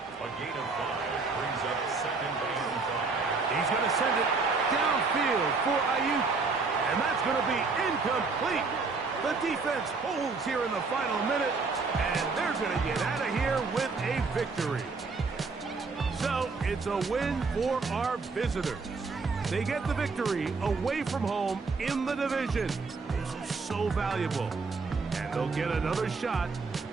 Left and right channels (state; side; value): quieter; left; 4.3 dB